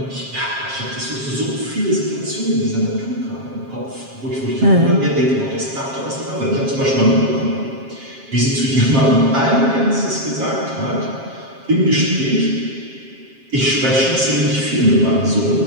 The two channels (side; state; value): left; late; 7.5 ms